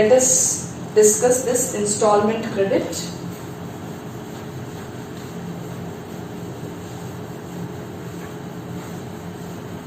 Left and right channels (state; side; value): identical; both; correlation 1.00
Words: us discuss this installment credit.